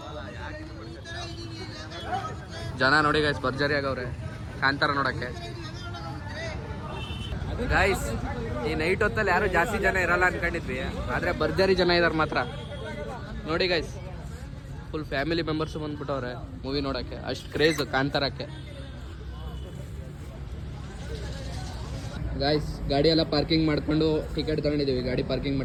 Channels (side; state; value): both; identical; correlation 1.00